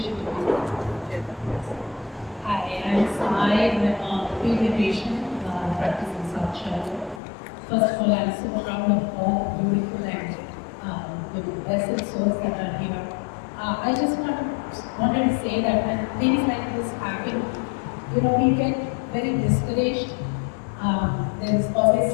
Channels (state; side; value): drops out; right; at 7.2 s